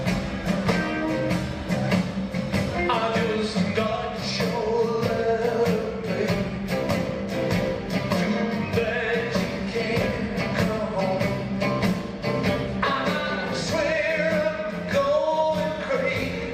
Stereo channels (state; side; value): identical; both; correlation 1.00